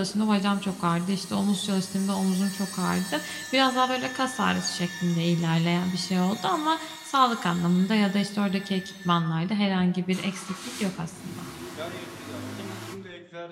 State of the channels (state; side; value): identical; both; correlation 1.00